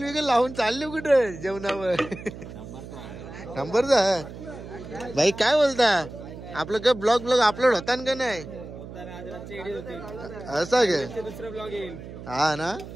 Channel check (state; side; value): noise; right; hum, 13 dB below the sound